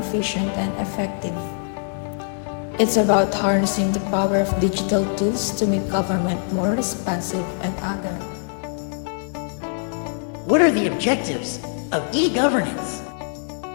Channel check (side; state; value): right; silent; 58 dB below the other